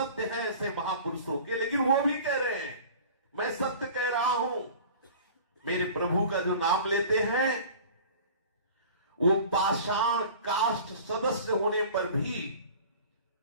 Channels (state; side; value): inverted; both; correlation -0.42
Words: है ऐसे महापुरुषों के, लेकिन वो भी कह रहे हैं मैं सत्य कह रहा हूं। मेरे प्रभु का जो नाम लेते हैं, वो पाषाण काष्ठ सदस्य होने पर भी